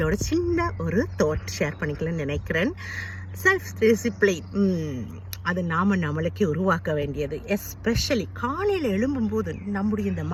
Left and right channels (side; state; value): both; identical; correlation 1.00